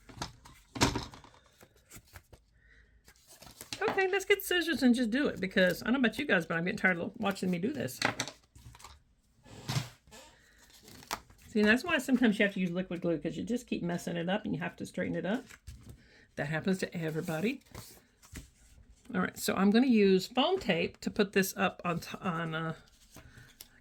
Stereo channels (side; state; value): both; identical; correlation 1.00